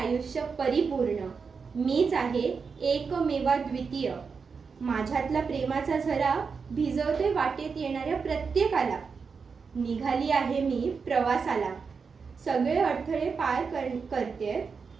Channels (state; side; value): quieter; left; 5.4 dB